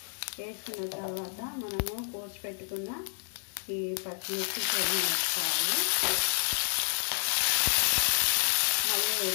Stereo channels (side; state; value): right; silent; digital silence